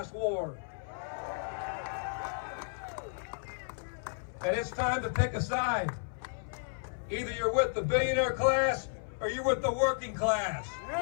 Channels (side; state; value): right; silent; 56 dB below the other